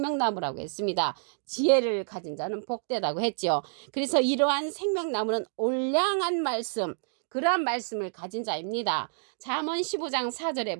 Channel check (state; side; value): silent; left; digital silence